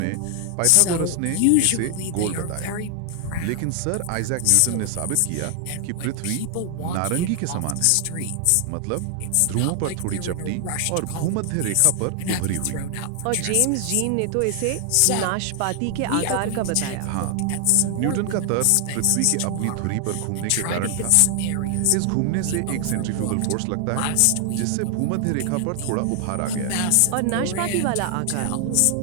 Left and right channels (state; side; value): different; both; correlation 0.00